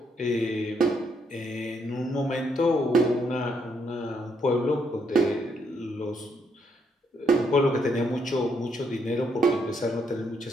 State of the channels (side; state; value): both; normal; correlation 0.75